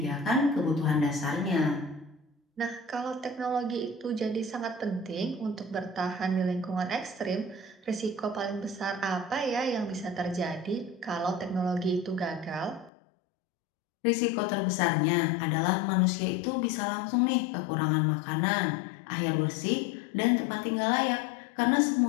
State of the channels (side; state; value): right; drops out; at 12.9 s